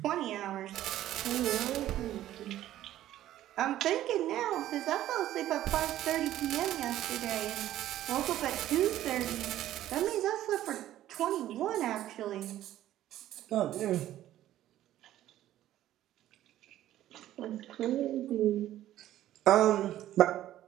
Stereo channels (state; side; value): quieter; left; 13.3 dB